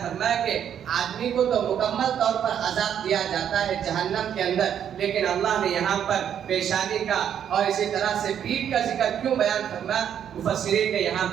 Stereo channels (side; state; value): left; quieter; 9.1 dB